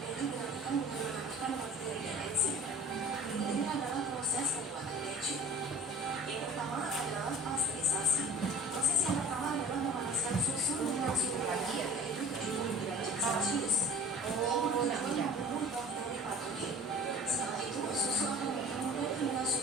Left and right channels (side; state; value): both; normal; correlation 0.44